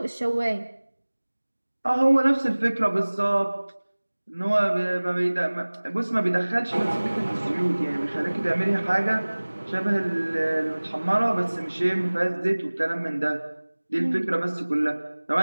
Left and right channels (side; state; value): both; inverted; correlation -1.00